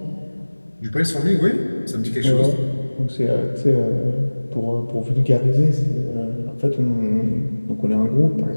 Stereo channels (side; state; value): both; inverted; correlation -1.00